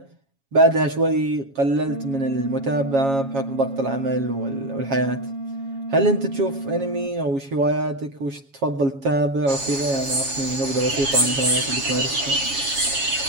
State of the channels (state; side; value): late; left; 7.3 ms